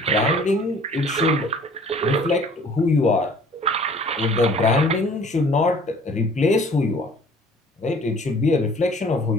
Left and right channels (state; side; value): normal; both; correlation 0.51